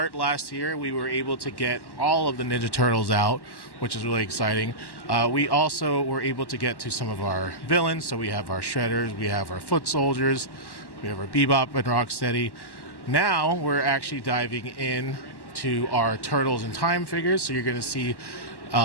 last year. We were able to get all of the Ninja Turtles out, which is really exciting. We also were able to get to some of our villains. So we have our Shredders, we have our Foot Soldiers, we have our Bebop and Rocksteady. Now we're actually diving in to our Turtles in Time figures. So you're going to see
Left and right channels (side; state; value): right; late; 1.1 ms